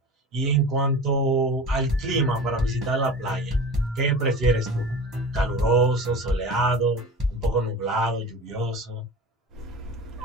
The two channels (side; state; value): both; normal; correlation 0.35